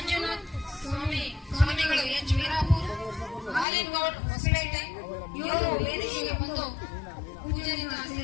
ಸ್ವಾಮಿಗಳು ಎಚ್ ವೀರಾಪುರ, ಹಾಲಿನ್ ಗೌಡ್ ಹೊಸಪೇಟೆ, ಇವರು ವೇದಿಕೆಗೆ ಬಂದು ಪೂಜೆಯಿಂದ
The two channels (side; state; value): right; drops out; at 3.7 s